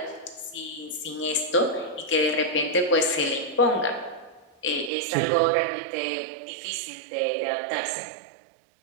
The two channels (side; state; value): left; drops out; at 4.9 s